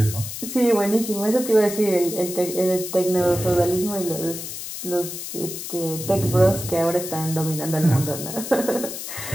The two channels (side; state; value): left; noise; hiss, 8 dB below the sound